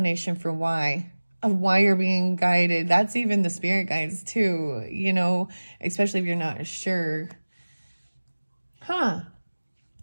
for why you're being guided. That's even the spirit guides too, especially if you're not sure.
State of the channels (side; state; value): both; inverted; correlation -1.00